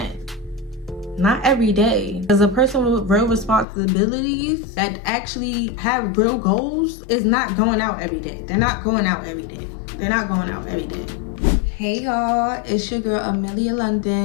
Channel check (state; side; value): drops out; right; at 3.7 s